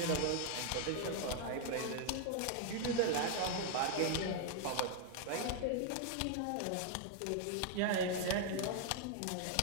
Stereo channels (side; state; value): both; different; correlation 0.00